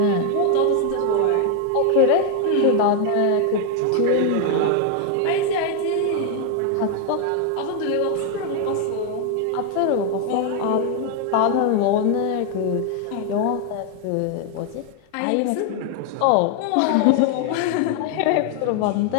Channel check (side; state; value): both; different; correlation 0.01